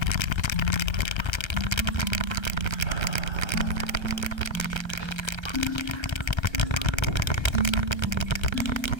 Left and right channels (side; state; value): right; late; 1.3 ms